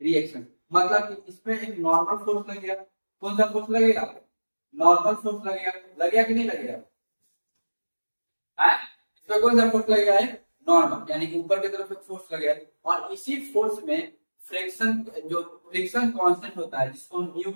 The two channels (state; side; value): inverted; both; correlation -1.00